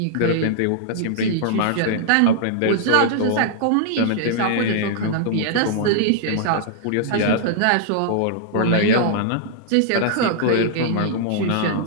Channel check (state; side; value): different; both; correlation -0.01